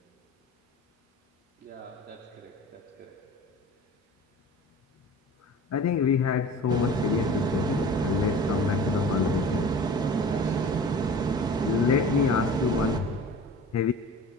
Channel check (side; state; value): both; normal; correlation 0.40